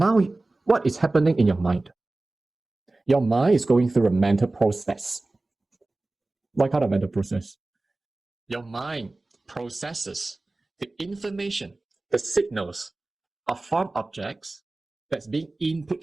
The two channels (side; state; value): left; quieter; 3.0 dB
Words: what is happening in your mind? Your mind is going through a mental process. What kind of mental process? Your mind processes the information, the signals of form objects that's being